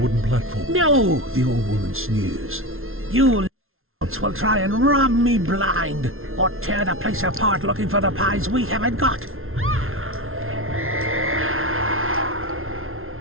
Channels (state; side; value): late; left; 0.61 ms